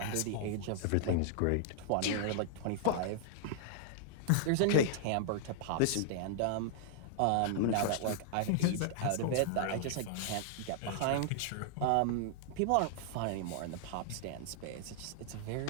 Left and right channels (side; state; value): both; different; correlation -0.01